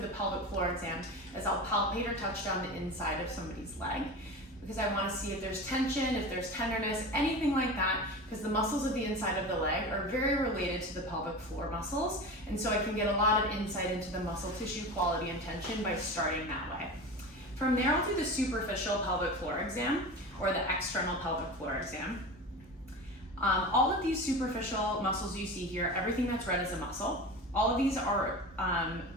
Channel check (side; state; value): both; normal; correlation 0.30